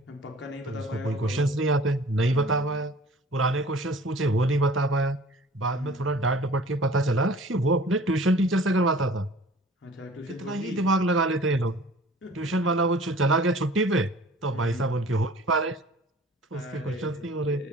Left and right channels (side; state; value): both; normal; correlation 0.47